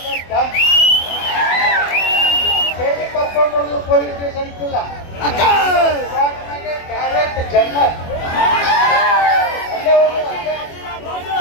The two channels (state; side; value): late; right; 24 ms